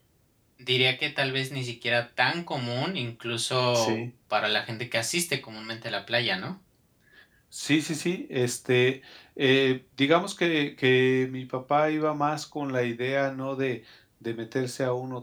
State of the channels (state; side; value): identical; both; correlation 1.00